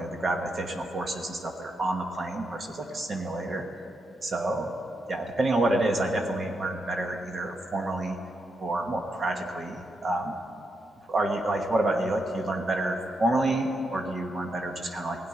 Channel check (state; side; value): normal; both; correlation 0.82